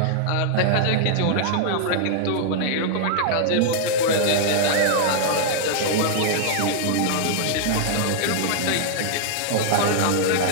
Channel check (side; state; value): both; different; correlation -0.01